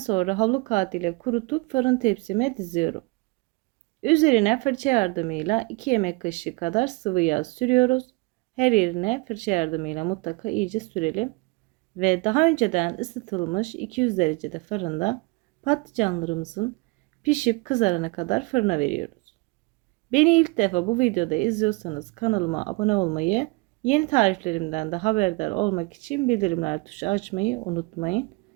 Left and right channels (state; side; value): quieter; left; 25.5 dB